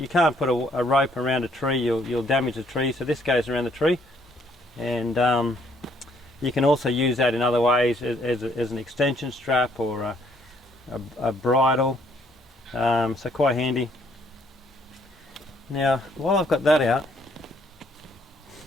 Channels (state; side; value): normal; both; correlation 0.67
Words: can't put a rope around a tree, you'll damage the tree, so this goes around the tree. And you can also use that in other ways as an extension strap or a bridle, so quite handy. Now, while I've got that out,